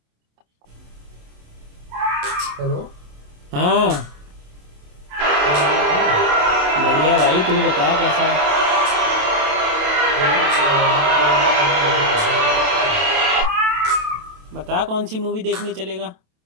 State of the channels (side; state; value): left; late; 27 ms